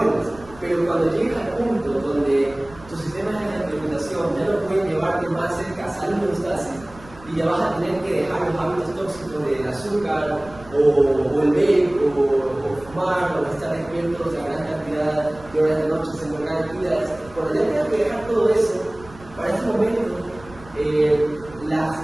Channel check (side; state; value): right; noise; rumble, 21 dB below the sound